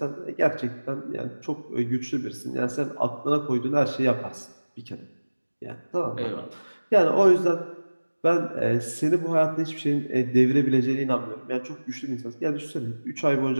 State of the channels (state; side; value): inverted; both; correlation -1.00